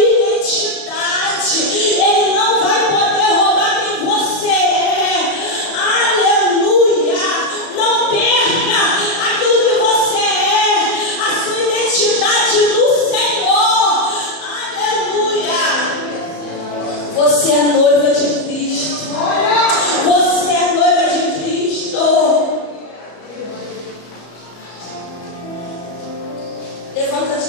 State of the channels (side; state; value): right; late; 34 ms